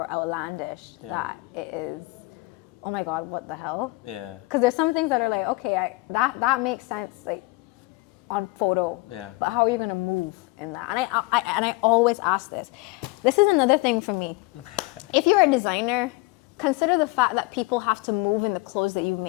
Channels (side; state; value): right; quieter; 24.3 dB